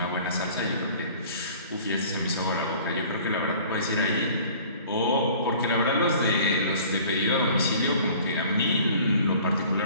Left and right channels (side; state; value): both; inverted; correlation -0.49